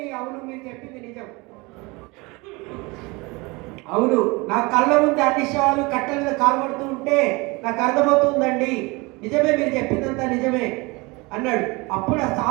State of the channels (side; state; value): left; quieter; 25.5 dB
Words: అవును, మీరు చెప్పింది నిజం. అవును, నా కళ్ళ ముందు అన్ని శవాలు కట్టెల మీద కాల్పడుతూ ఉంటే నాకు అర్థమవుతుందండి. నిజమే, మీరు చెప్పిందంతా నిజమే అన్నాడు. అప్పుడు ఆ